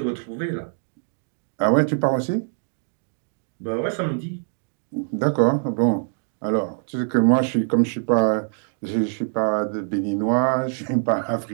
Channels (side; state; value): left; silent; digital silence